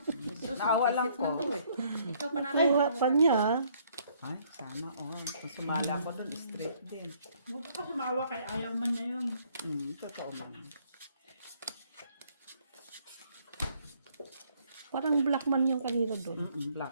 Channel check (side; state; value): both; inverted; correlation -0.64